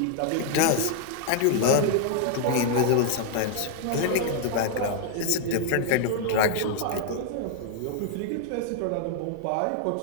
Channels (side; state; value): both; different; correlation 0.00